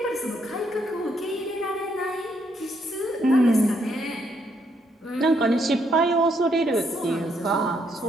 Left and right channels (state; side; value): normal; both; correlation 0.74